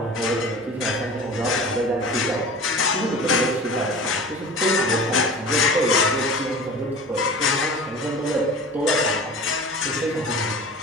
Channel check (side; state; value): both; normal; correlation 0.38